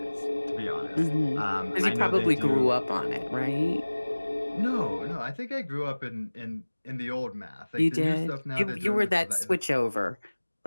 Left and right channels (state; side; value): inverted; both; correlation -1.00